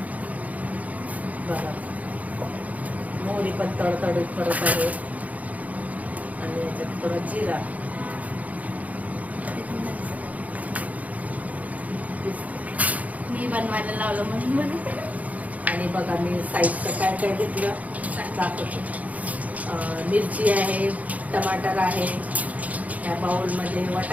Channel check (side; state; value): left; late; 0.073 ms